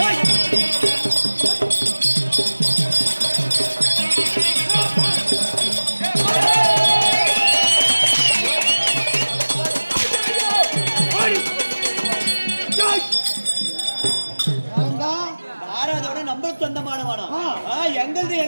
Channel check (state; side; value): inverted; both; correlation -1.00